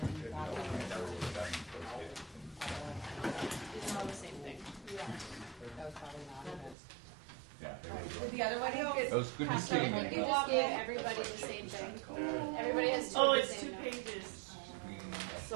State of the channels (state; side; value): drops out; left; at 6.8 s